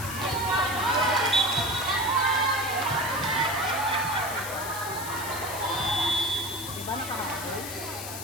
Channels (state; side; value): noise; left; hiss, 8 dB below the sound